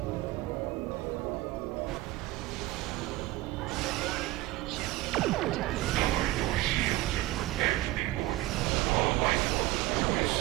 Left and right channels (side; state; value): left; quieter; 17.9 dB